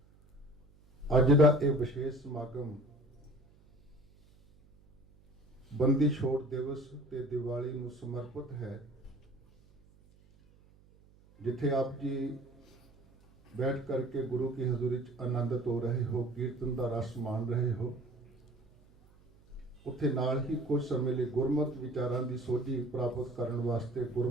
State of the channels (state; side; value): noise; right; hum, 28 dB below the sound